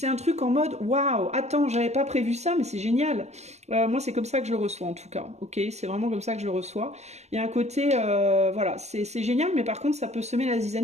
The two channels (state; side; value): late; left; 0.32 ms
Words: un truc en mode waouh, attends, j'avais pas prévu ça, mais c'est génial. Moi c'est comme ça que je le reçois en tout cas, ok? C'est vraiment comme ça que je le reçois. Il y a un côté, voilà, c'est génial, mais par contre ça peut semer la